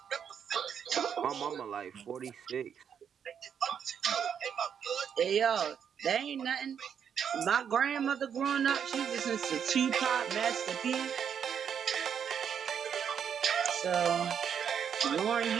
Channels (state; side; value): quieter; left; 7.9 dB